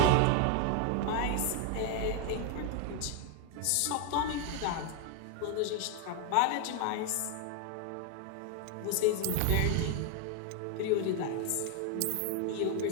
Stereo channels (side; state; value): both; different; correlation 0.00